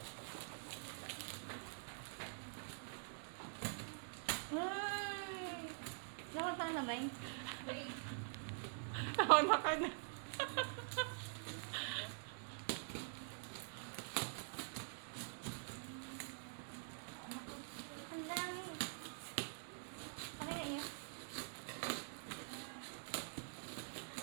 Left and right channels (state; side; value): silent; left; digital silence